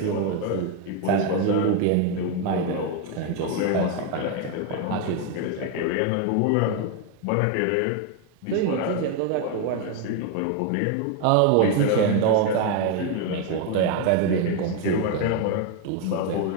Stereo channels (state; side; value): different; both; correlation 0.01